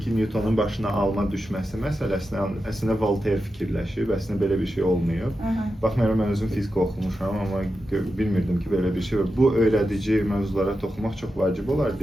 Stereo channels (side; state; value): both; normal; correlation 0.90